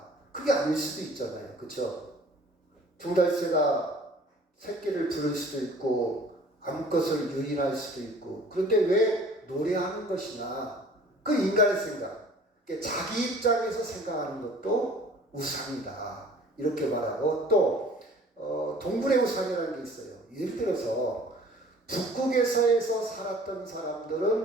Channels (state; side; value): normal; both; correlation 0.49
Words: 그게 아닐 수도 있잖아요. 그렇죠? 종달새가 새끼를 부를 수도 있고 암컷을 유인할 수도 있고 그런데 왜 노래하는 것이냐? 그 인간의 생각. 자기 입장에서 생각하는 것도 우상이다. 이렇게 말하고 또 동굴의 우상이라는 게 있어요. 예를 들어서 북극에서에서 살았던